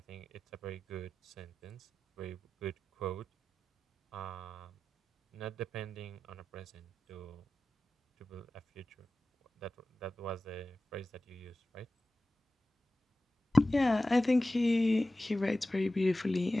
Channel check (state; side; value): normal; both; correlation 0.95